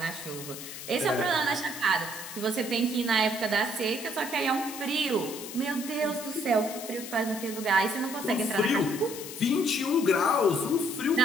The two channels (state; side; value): noise; left; hiss, 11 dB below the sound